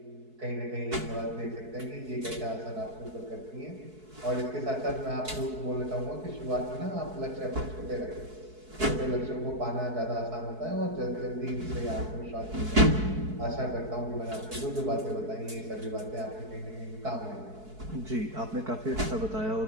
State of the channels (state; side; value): late; left; 4.6 ms